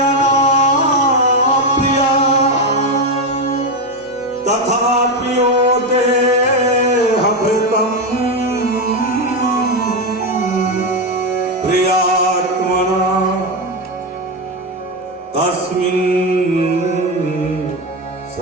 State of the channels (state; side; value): normal; both; correlation 0.11